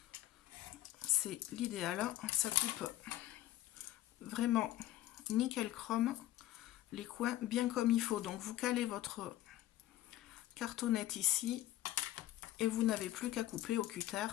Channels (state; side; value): quieter; right; 14.5 dB